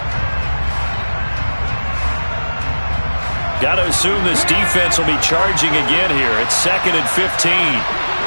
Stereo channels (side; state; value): both; inverted; correlation -1.00